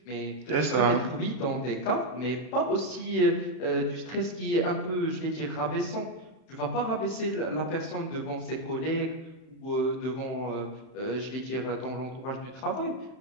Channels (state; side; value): late; right; 31 ms